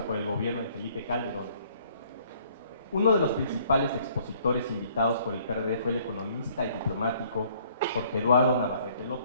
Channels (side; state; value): both; inverted; correlation -0.61